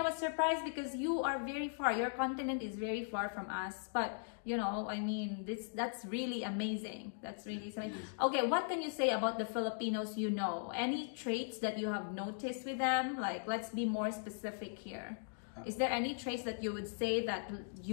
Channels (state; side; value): silent; right; digital silence